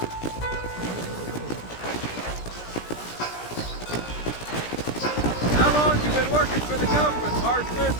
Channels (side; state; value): right; late; 17 ms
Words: How long you been working for the government, Marston?